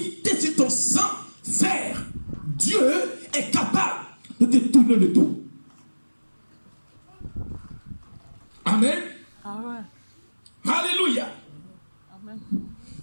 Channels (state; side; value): inverted; both; correlation -1.00